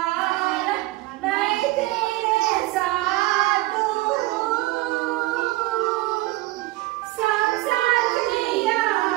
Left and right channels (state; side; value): quieter; left; 19.1 dB